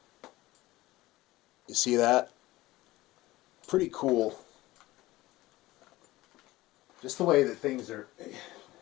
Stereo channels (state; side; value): quieter; right; 18.2 dB